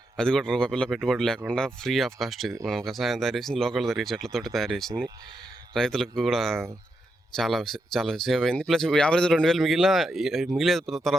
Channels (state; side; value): normal; both; correlation 0.84